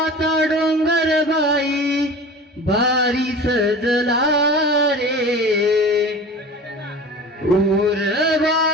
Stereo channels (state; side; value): normal; both; correlation 0.37